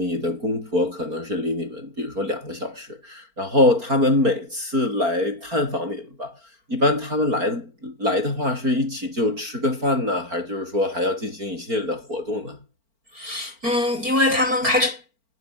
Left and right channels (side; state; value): left; late; 4.4 ms